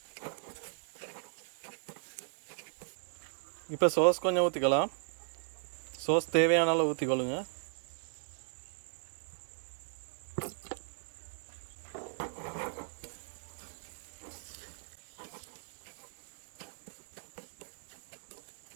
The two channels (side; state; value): left; silent; digital silence